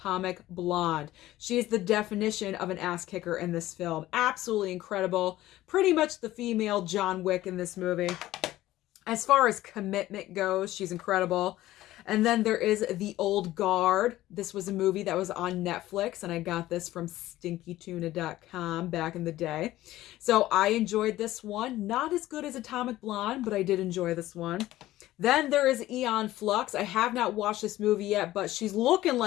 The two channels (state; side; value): quieter; right; 15.5 dB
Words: Blonde. She is the definition of an ass kicker in this film. Absolutely incredible. Pretty much the female John Wick in this movie. As far as commitment goes, she's incredible. And then there is The Old Guard. This was a movie that was on Netflix, and I got this from stinkytuna.com back in the day. So I enjoyed this one. Not as good as Atomic Blonde, but I did enjoy this one. Then there is Aeon Flux. I have not watched this movie yet, but she's looking